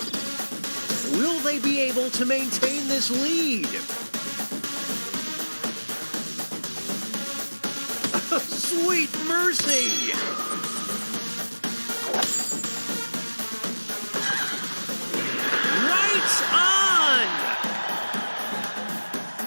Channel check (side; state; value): both; inverted; correlation -1.00